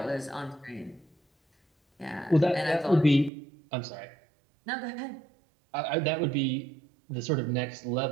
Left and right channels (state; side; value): drops out; left; at 3.3 s